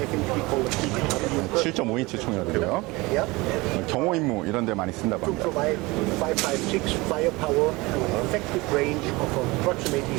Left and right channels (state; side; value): quieter; left; 22.9 dB